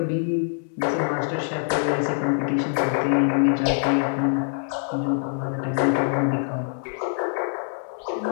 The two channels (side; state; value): right; silent; digital silence